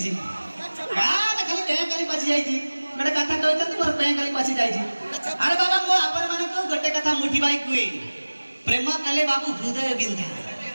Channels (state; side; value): inverted; both; correlation -1.00